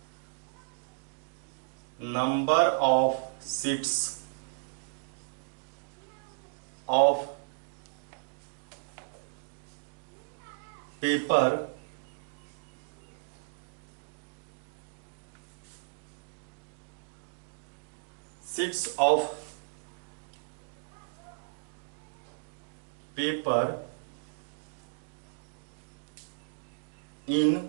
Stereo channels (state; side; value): silent; left; digital silence